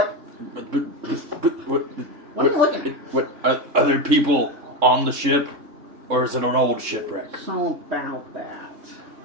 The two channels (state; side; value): late; left; 3.7 ms